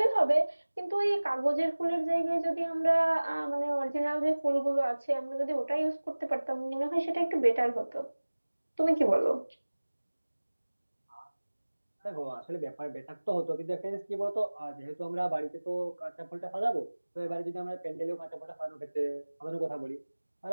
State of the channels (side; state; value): both; inverted; correlation -1.00